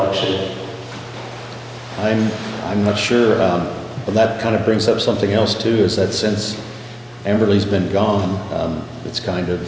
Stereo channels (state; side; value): identical; both; correlation 1.00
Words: I'm not sure. Well, that kind of brings up something else too, is that since Amberly's been gone, it's kind